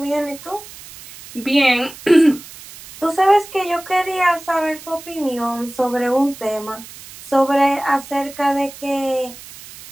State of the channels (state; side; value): noise; right; hiss, 17 dB below the sound